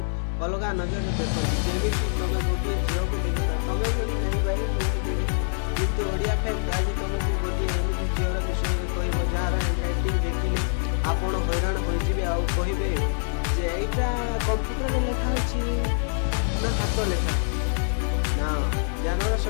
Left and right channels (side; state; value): right; silent; 58 dB below the other